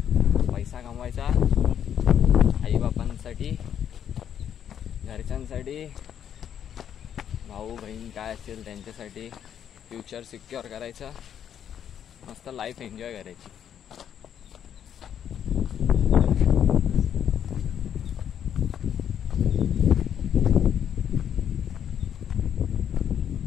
पैसा कमवायचा, आईबापांसाठी, घरच्यांसाठी, भाऊ बहीण काय असेल त्यांच्यासाठी, फ्युचर सिक्युअर करायचं, मस्त लाईफ एन्जॉय करायची.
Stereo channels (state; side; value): quieter; right; 9.2 dB